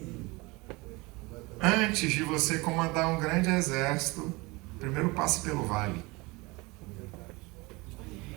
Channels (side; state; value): left; quieter; 24.5 dB